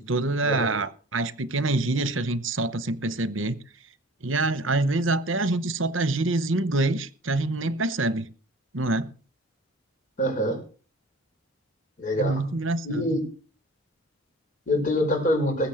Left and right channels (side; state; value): both; normal; correlation 0.45